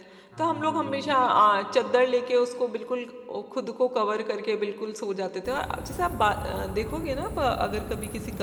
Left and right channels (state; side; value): identical; both; correlation 1.00